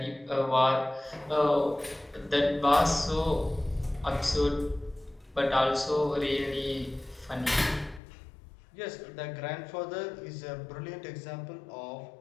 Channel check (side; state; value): right; drops out; at 8.0 s